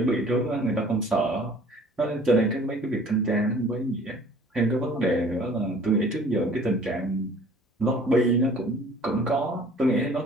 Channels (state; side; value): normal; both; correlation 0.51